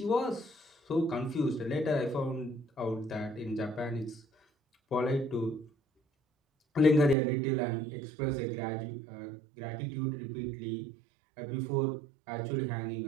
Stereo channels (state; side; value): drops out; left; at 7.2 s